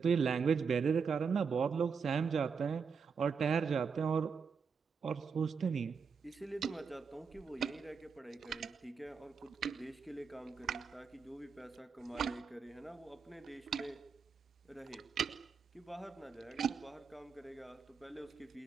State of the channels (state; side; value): quieter; left; 5.7 dB